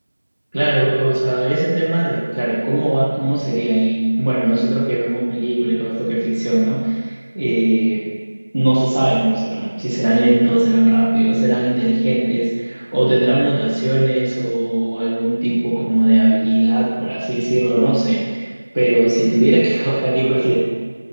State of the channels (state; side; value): inverted; both; correlation -1.00